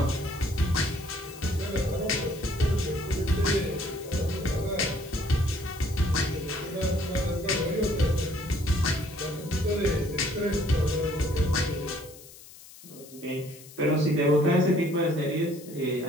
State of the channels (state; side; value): noise; left; hiss, 19 dB below the sound